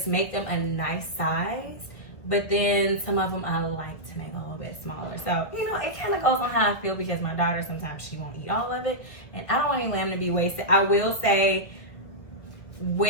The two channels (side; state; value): right; late; 1.2 ms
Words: make them a nice size. But then some of them I like to make a little bit smaller. So, you know, it kind of goes on how I feel because my daughter, sometimes she won't eat all of it. And I don't want any lamb to be wasted. I will say,